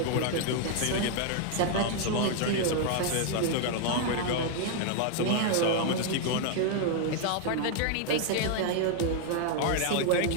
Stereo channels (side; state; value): both; different; correlation 0.00